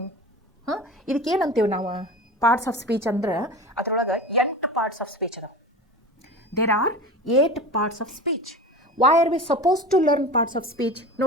ಇದಕ್ಕೇನಂತೀವಿ ನಾವು? ಪಾರ್ಟ್ಸ್ ಆಫ್ ಸ್ಪೀಚ್ ಅಂದ್ರೆ ಅದರೊಳಗೆ 8 ಪಾರ್ಟ್ಸ್ ಆಫ್ ಸ್ಪೀಚ್ ಅದಾವೆ. There are 8 parts of speech. Why are we suppose to learn parts of speech?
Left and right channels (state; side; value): normal; both; correlation 0.32